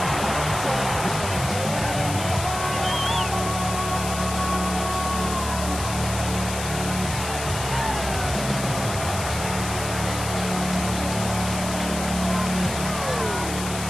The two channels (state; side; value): noise; left; hiss, 8 dB below the sound